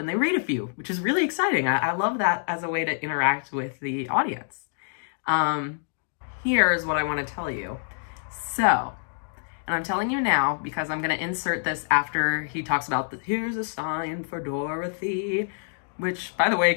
they read a few, which is really exciting. I love that as a way to interact with the audience. Here's what I want to tell you. So, and I'm telling you now because I'm going to insert this after he talks about here's a sign for Dorothy, which, by the way,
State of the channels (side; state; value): right; silent; digital silence